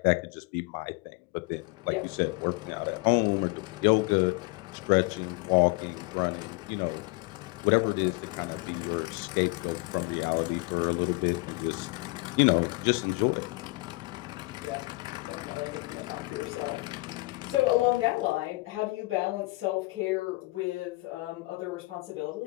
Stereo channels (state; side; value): quieter; right; 24.5 dB